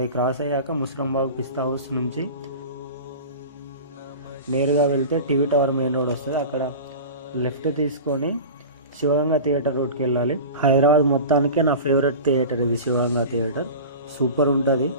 క్రాస్ అయ్యాక ముస్రంబాగ్ పిస్తా హౌస్ నుంచి నేరుగా వెళ్తే టీవీ టవర్ మెయిన్ రోడ్ వస్తుంది. అక్కడ లెఫ్ట్ తీసుకొని శివగంగా థియేటర్ రోడ్కి వెళ్ళాలి. హైదరాబాద్ మొత్తానికే నా ఫేవరెట్ థియేటర్ ఇది, శివగంగా థియేటర్. సూపర్ ఉంటుంది,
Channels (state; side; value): inverted; both; correlation -0.33